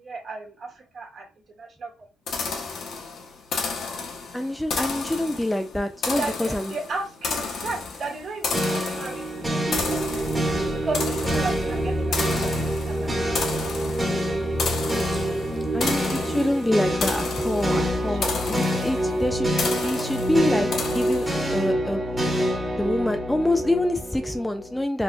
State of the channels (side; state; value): both; normal; correlation 0.86